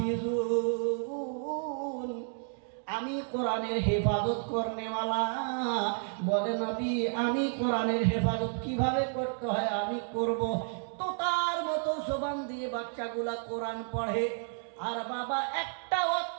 লাহাফিজুন। আমি কোরআনের হেফাজত করনেওয়ালা। বলে নবী, আমি কোরআনের হেফাজত কিভাবে করতে হয় আমি করব। তো তার মতো জবান দিয়ে বাচ্চাগুলা কোরআন পড়ে, আর বাবা একটা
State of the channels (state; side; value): silent; left; 57 dB below the other